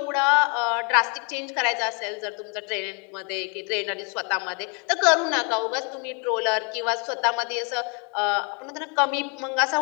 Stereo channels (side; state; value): right; quieter; 35.7 dB